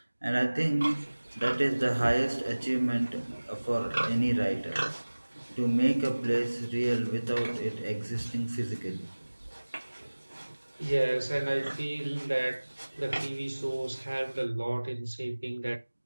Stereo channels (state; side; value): inverted; both; correlation -1.00